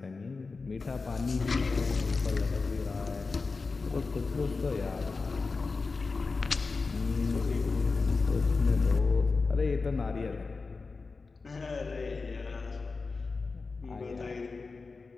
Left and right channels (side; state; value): right; quieter; 4.2 dB